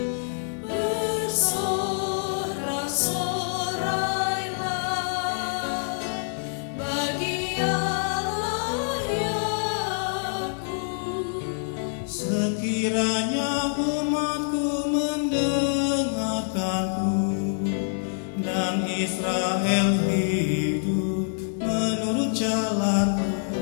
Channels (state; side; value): silent; right; digital silence